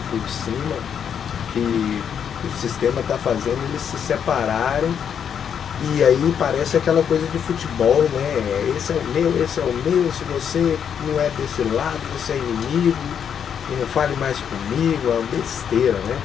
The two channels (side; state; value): right; quieter; 8.0 dB